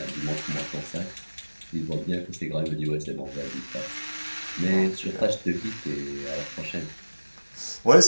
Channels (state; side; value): inverted; both; correlation -1.00